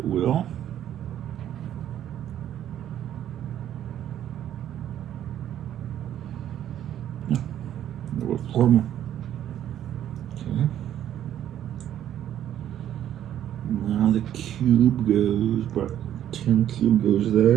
will. No, there were four more. Okay. Now the cube goes, but tin cube goes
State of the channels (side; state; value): left; quieter; 11.0 dB